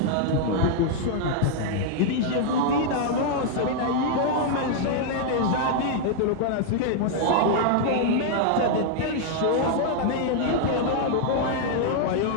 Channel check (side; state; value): both; different; correlation 0.00